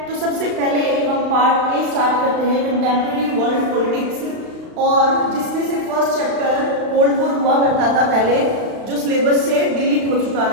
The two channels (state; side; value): late; left; 35 ms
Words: तो सबसे पहले हम पार्ट ए स्टार्ट करते हैं कंटेम्प्रेरी वर्ल्ड पॉलिटिक्स, और जिसमें से फर्स्ट चैप्टर कोल्ड वॉर हुआ करता था पहले, जो सिलेबस से डिलीट हो चुका